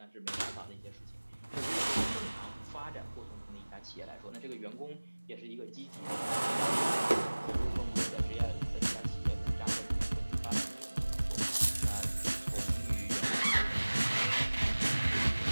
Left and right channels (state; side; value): inverted; both; correlation -1.00